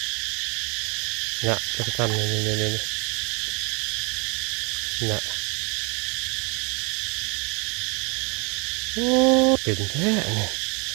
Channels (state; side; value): quieter; left; 31.9 dB